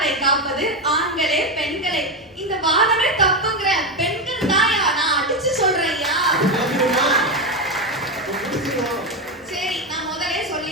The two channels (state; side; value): normal; both; correlation 0.12